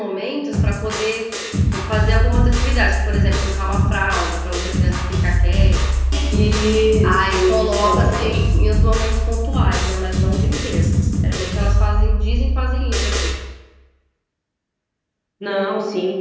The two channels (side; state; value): both; identical; correlation 1.00